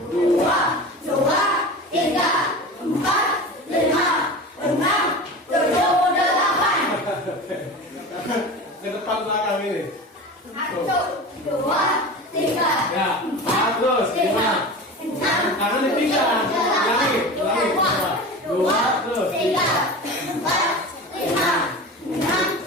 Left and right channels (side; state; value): both; normal; correlation 0.32